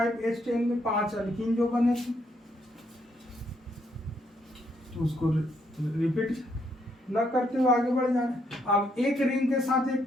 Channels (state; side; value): normal; both; correlation 0.74